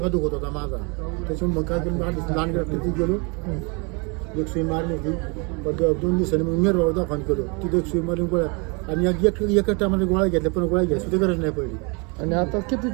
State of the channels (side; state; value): left; quieter; 31.8 dB